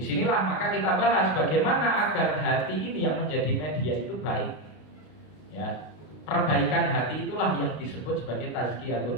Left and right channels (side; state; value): right; late; 33 ms